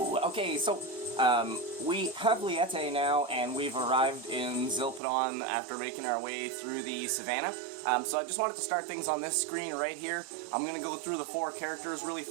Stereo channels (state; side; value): drops out; left; at 5.0 s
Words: Okay, so, we have Liete now, and we've arrived in Zilpidon after making our way through the savannah. So I just wanted to start things on this screen right here. I'm gonna go through the 4 characters really